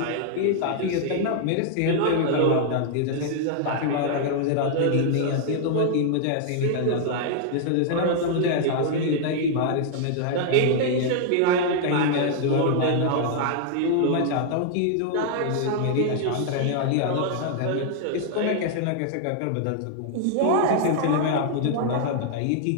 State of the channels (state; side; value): different; both; correlation -0.01